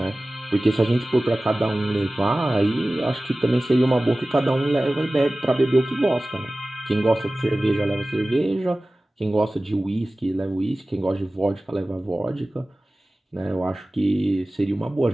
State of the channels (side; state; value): both; normal; correlation 0.97